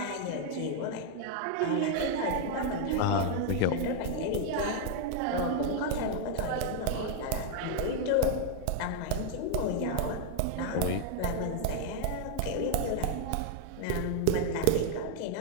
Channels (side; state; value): both; different; correlation 0.00